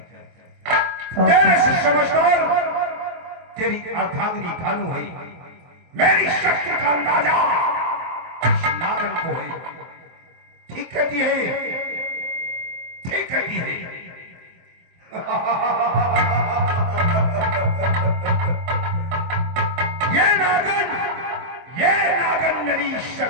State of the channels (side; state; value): left; late; 23 ms